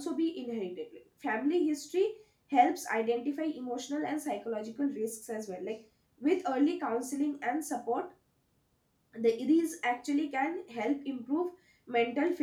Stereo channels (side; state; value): both; identical; correlation 1.00